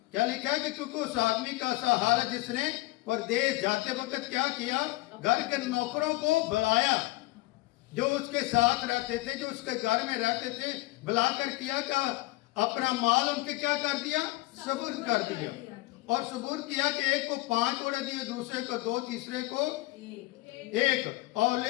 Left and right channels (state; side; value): quieter; right; 20.4 dB